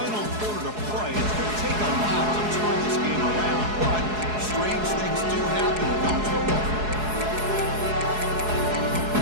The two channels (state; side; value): late; left; 4.7 ms